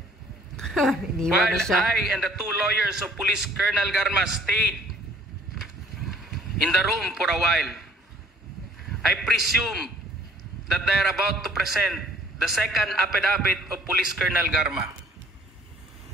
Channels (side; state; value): both; normal; correlation 0.57